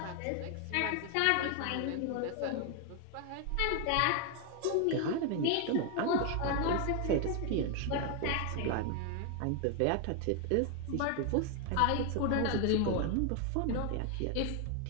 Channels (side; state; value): both; different; correlation 0.01